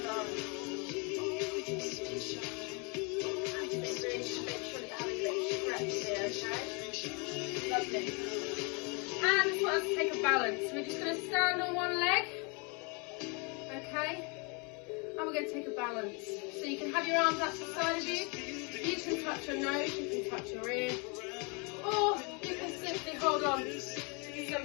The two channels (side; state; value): right; quieter; 32.6 dB